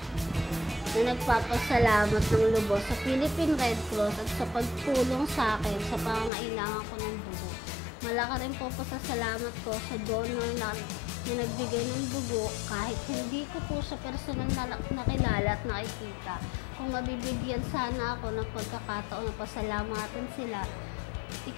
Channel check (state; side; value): drops out; right; at 6.3 s